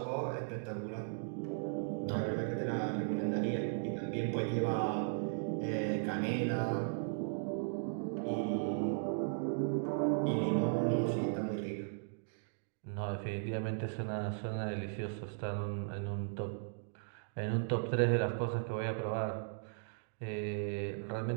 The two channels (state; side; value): silent; left; digital silence